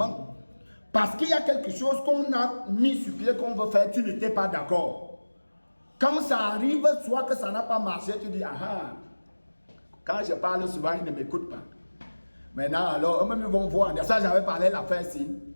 Parce qu'il y a quelque chose qu'on a mis sur pied qu'on veut faire, tu n'étais pas d'accord. Quand ça arrive, soit que ça n'a pas marché, tu dis, ah, quand je parle souvent, ils ne m'écoutent pas. Maintenant, alors, eux-mêmes ils vont voir, ça j'avais parlé la fin ci.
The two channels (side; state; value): both; inverted; correlation -1.00